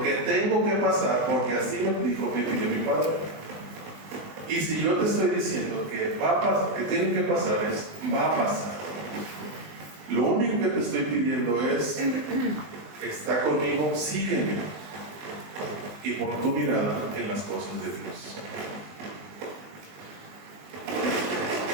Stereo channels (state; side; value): late; left; 20 ms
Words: que tengo que pasar, porque así me dijo mi Padre. Y si yo te estoy diciendo que va a pasar, que tiene que pasar, va a pasar. Lo único que te estoy pidiendo es, está conmigo, sígueme. Y pon tu mirada en las cosas de Dios.